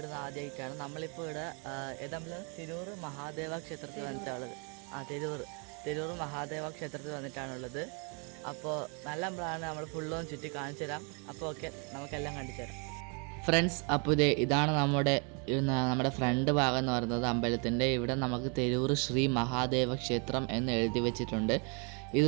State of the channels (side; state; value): left; quieter; 33.8 dB